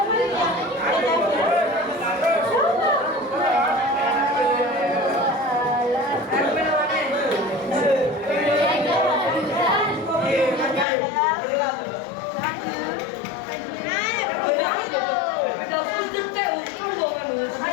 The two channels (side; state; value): right; drops out; at 10.9 s